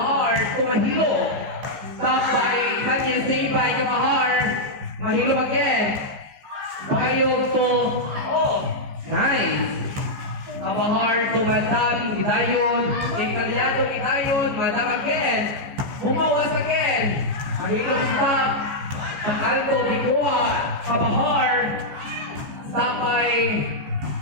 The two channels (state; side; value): late; left; 15 ms